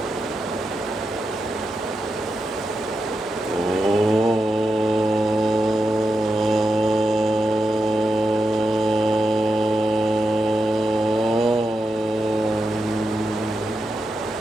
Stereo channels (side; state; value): both; normal; correlation 0.87